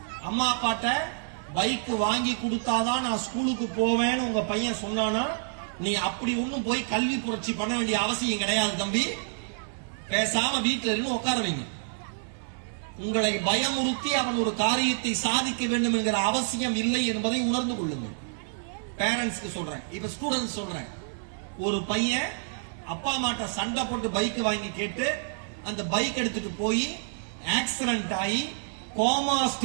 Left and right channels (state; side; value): silent; left; 59 dB below the other